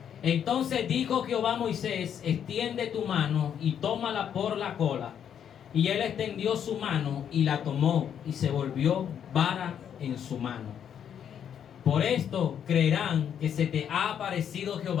Entonces dijo Jehová a Moisés: extiende tu mano y tómala por la cola. Y él extendió su mano y la tomó, y se volvió vara en su mano. Por esto creerán que se te ha aparecido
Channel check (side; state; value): right; quieter; 8.8 dB